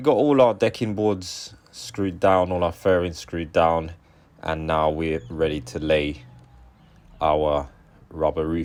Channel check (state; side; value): identical; both; correlation 1.00